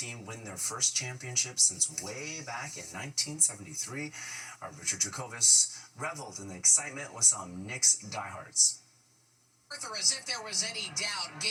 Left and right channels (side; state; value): both; identical; correlation 1.00